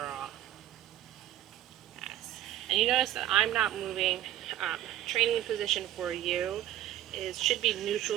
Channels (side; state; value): left; quieter; 12.6 dB